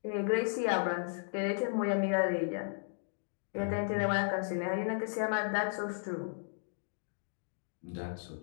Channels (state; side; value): silent; right; digital silence